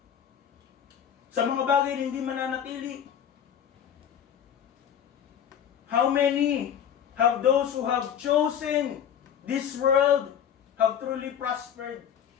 Sa mga bagay na hindi mananatili. How many have those who have chosen this world have truly prospered?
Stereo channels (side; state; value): right; quieter; 8.9 dB